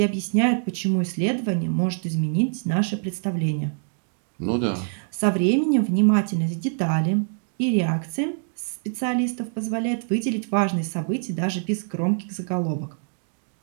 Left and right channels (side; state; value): left; silent; digital silence